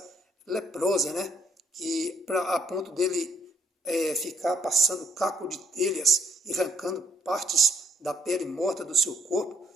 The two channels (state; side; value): normal; both; correlation 0.65